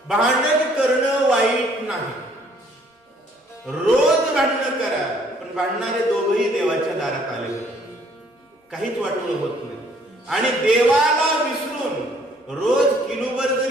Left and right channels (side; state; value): both; normal; correlation 0.62